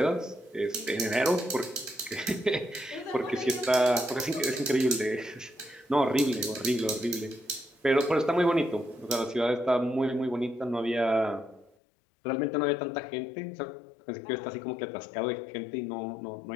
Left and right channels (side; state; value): right; drops out; at 11.7 s